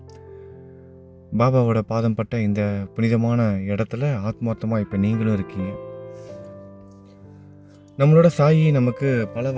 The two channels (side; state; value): both; identical; correlation 1.00